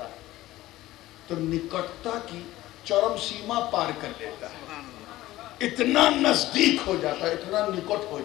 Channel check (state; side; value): quieter; right; 16.3 dB